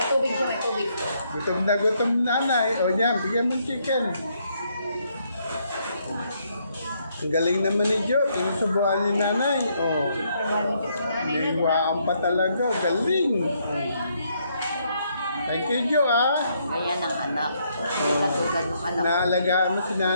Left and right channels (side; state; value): both; inverted; correlation -0.73